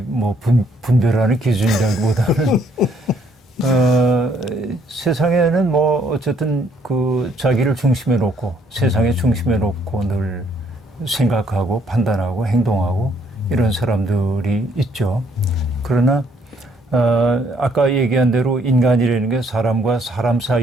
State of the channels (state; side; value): normal; both; correlation 0.67